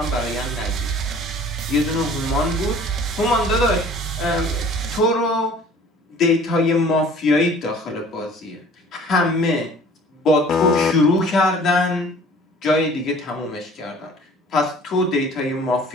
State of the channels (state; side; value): normal; both; correlation 0.49